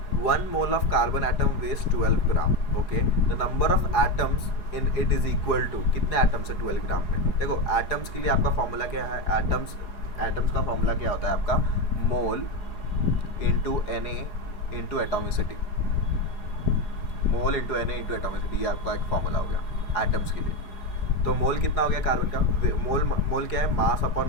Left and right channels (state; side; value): late; right; 4.8 ms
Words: 1 mole of carbon atom weighs 12 gram. Okay, the number of atoms in it is equal to, कितने एटम्स है 12 ग्राम में। देखो एटम्स के लिए आपका फॉर्मूला क्या है, एटम्स का फॉर्मूला क्या होता है आपका, मोल इंटू Na इंटू एटोमिसिटी। मोल इंटू Na इंटू एटोमिसिटी, ये आपका एक फॉर्मूला हो गया एटम्स के लिए। तो मोल कितना हो गया कार्बन का, मोल क्या है, mass upon